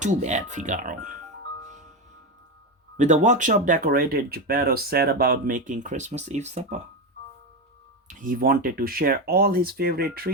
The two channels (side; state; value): both; normal; correlation 0.14